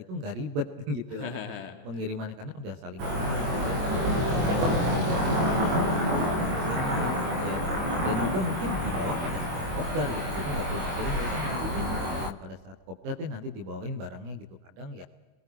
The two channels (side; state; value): left; late; 24 ms